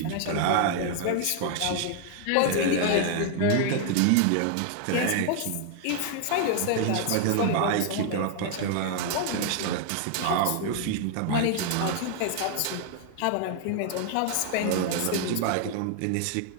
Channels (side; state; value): both; different; correlation 0.00